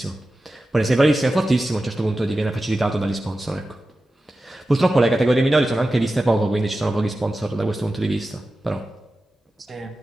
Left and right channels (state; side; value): normal; both; correlation 0.93